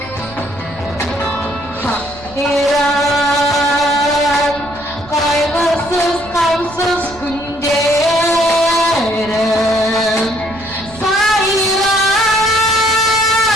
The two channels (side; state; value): right; noise; rumble, 19 dB below the sound